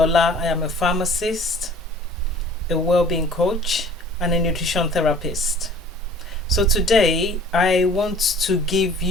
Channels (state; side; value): normal; both; correlation 0.48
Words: I am a pharmacist, a well-being coach, and a nutrition therapist. So today, I want to give